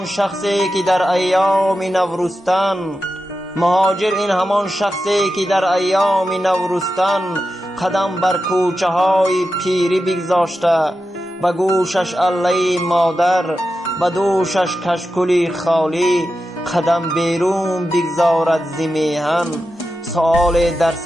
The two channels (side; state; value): both; normal; correlation 0.91